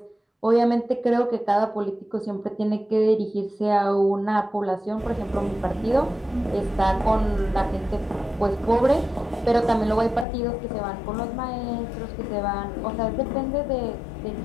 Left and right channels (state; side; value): drops out; right; at 10.2 s